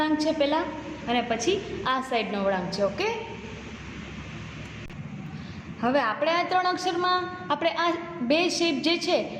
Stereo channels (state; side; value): identical; both; correlation 1.00